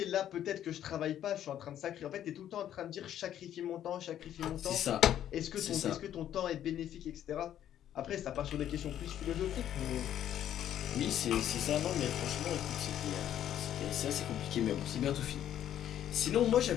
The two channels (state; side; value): quieter; right; 11.0 dB